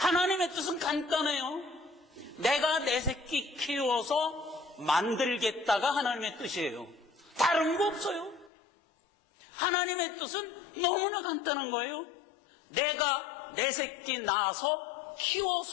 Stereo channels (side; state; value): right; drops out; at 8.5 s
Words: 뜻은 간단해요. 내가 내 새끼 키워서 만들겠다가 하나님의 뜻이에요. 다른 거 없어요. 하나님의 뜻은 너무나 간단한 거예요. 내가 내 새끼 낳아서